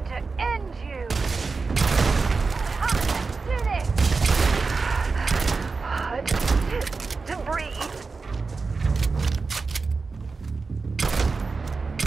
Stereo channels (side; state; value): left; quieter; 4.3 dB